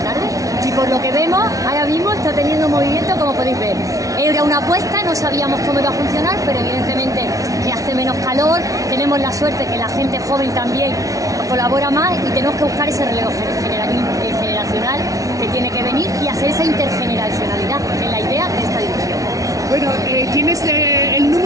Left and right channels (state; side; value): late; left; 0.17 ms